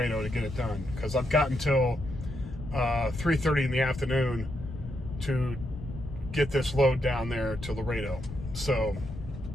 to get it done, because I've got until 3:30 in the afternoon to get this load down there to Laredo. So,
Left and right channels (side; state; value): left; noise; rumble, 10 dB below the sound